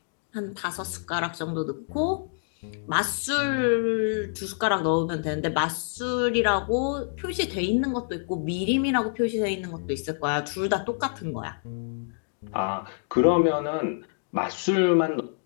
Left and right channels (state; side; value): silent; right; digital silence